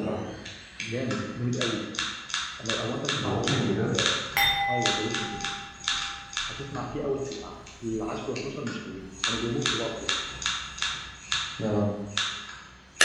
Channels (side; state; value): both; identical; correlation 1.00